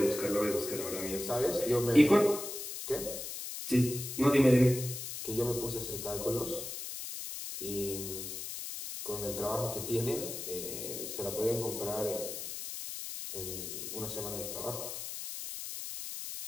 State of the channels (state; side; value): noise; left; hiss, 7 dB below the sound